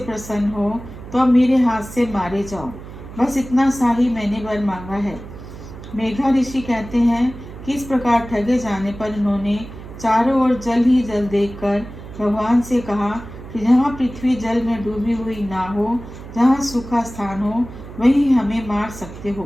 हो तो अब मेरे हाथ से मारे जाओ। बस इतना सा ही मैंने वर मांगा है। मेघा ऋषि कहते हैं कि इस प्रकार ठगे जाने पर उन्होंने चारों ओर जल ही जल देखकर भगवान से कहा कि जहाँ पृथ्वी जल में डूबी हुई ना हो, जहाँ सूखा स्थान हो, वहीं हमें मार सकते हो।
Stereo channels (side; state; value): right; noise; hum, 14 dB below the sound